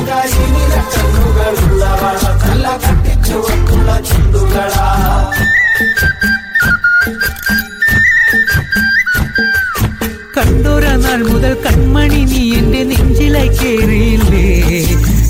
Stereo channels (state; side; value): identical; both; correlation 1.00